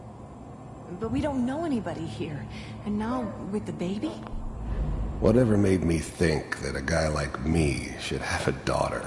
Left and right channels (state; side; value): identical; both; correlation 1.00